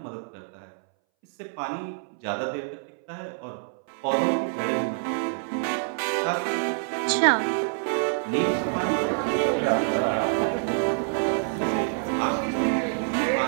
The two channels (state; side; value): silent; left; 61 dB below the other